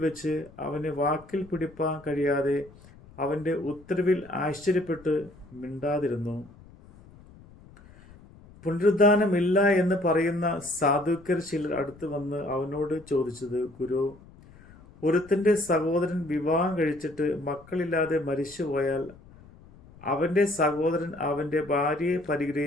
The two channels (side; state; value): left; noise; rumble, 23 dB below the sound